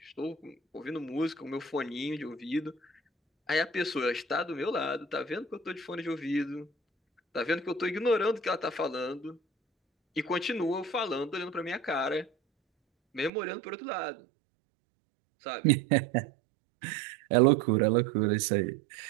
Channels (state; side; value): drops out; left; at 13.3 s